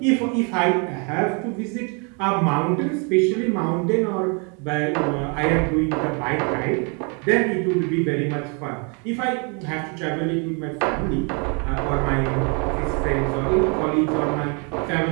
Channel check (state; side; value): quieter; left; 35.2 dB